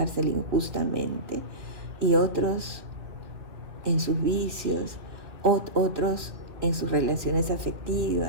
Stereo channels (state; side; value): late; left; 2.6 ms